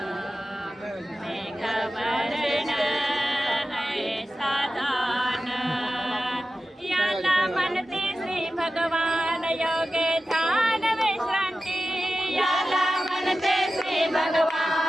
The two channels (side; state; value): both; normal; correlation 0.93